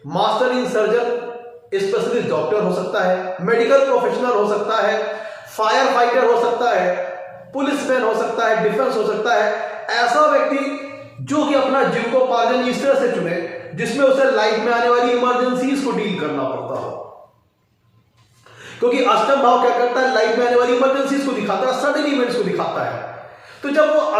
master in surgeon specialist doctor हो सकता है, मेडिकल प्रोफेशनल हो सकता है, फायर फाइटर हो सकता है, पुलिसमैन हो सकता है, डिफेंस हो सकता है। ऐसा व्यक्ति जो कि अपना जीविकोपार्जन इस तरह से चुने जिसमें उसे लाइफ में आने वाली इमरजेंसीज को डील करना पड़ता हो, क्योंकि अष्टम भाव क्या करता है, लाइफ में आने वाली इमरजेंसीज को दिखाता है, सडन इवेंट्स को दिखाता है। तो जब वो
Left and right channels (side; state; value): both; identical; correlation 1.00